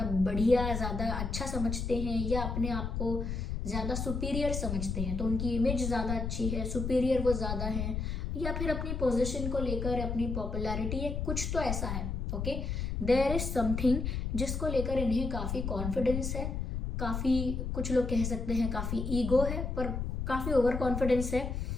बढ़िया, ज़्यादा अच्छा समझते हैं, या अपने आप को ज़्यादा सुपीरियर समझते हैं, तो उनकी इमेज ज़्यादा अच्छी है, सुपीरियर वो ज़्यादा है, या फिर अपनी पोजीशन को लेकर, अपनी पॉपुलैरिटी है, कुछ तो ऐसा है। ओके देयर इज समथिंग जिसको लेकर इन्हें काफ़ी कॉन्फिडेंस है, काफ़ी, कुछ लोग कह सकते हैं काफ़ी ईगो है, पर काफ़ी ओवर कॉन्फिडेंस है,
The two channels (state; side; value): noise; left; rumble, 3 dB below the sound